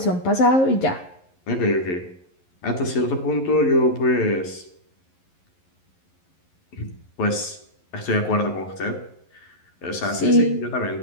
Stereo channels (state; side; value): late; right; 11 ms